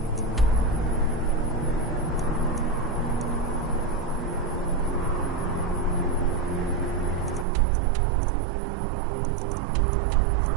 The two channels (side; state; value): left; drops out; at 7.5 s